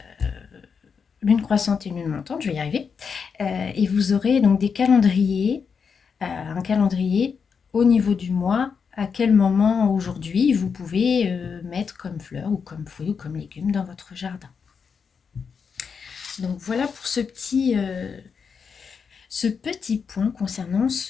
lune croissante et lune montante, je vais y arriver, et vous aurez donc des calendriers, un calendrier au niveau du mois, à quel moment aujourd'hui vous pouvez mettre comme fleurs ou comme fruits ou comme légumes dans votre jardin. Donc voilà pour ce petit point concernant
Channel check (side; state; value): right; quieter; 6.0 dB